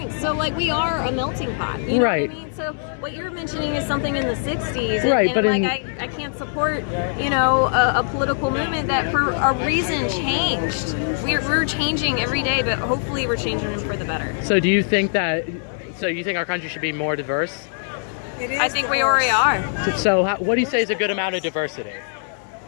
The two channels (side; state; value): right; silent; digital silence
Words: So, we are a melting pot. You know what I mean? So, what you're mentioning is something in the 60s. I can't support, a political movement that for a reason changed. We're changing every day, but hopefully we're changing for the better. So, do you think our country should be more diverse? I think we already are. So what do you say is a good amount of diversity?